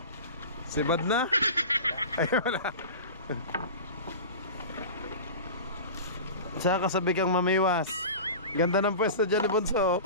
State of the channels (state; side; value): inverted; both; correlation -0.33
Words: Sibad na? Ay, wala. Saka kasabi kang mamiwas. Ganda ng pwesto dyan ni Bunso.